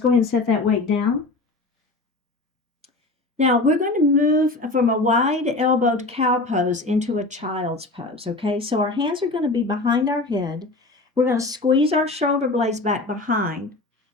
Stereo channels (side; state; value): right; quieter; 3.0 dB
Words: ahead and set that weight down. Now we're going to move from a wide elbowed cow pose into a child's pose, okay? So our hands are going to be behind our head. We're going to squeeze our shoulder blades back behind.